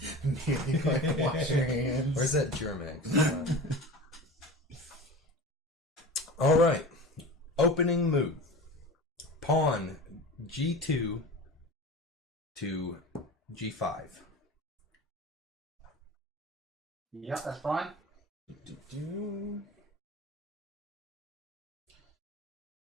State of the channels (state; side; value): normal; both; correlation 0.34